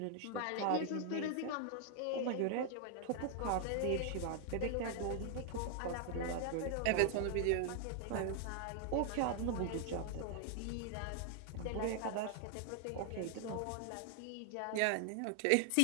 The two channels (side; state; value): both; different; correlation 0.00